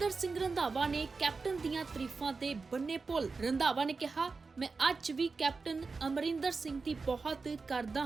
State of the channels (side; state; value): left; quieter; 4.3 dB